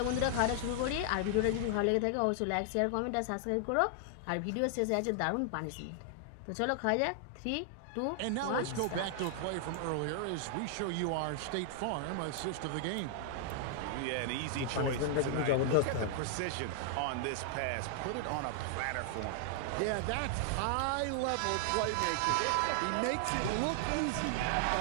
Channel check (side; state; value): both; different; correlation 0.00